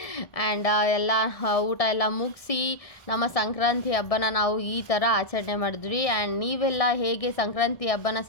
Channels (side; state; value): right; late; 1.7 ms